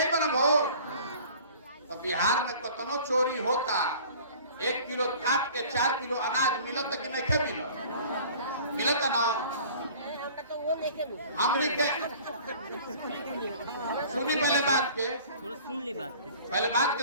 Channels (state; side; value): inverted; both; correlation -0.47